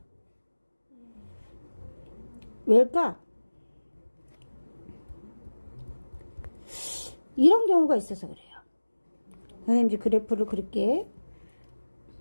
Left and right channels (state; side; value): inverted; both; correlation -1.00